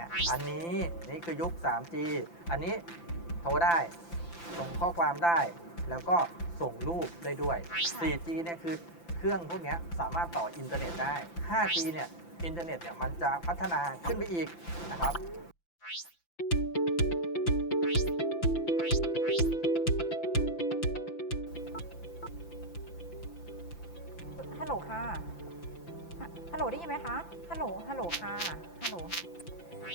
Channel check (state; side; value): late; right; 5.9 ms